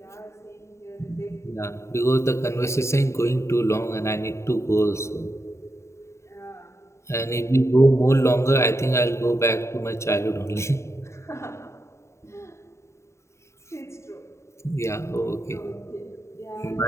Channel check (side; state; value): right; late; 0.14 ms